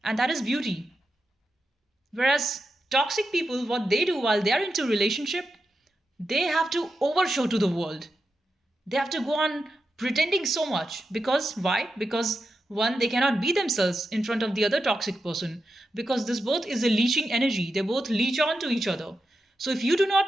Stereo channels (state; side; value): normal; both; correlation 0.88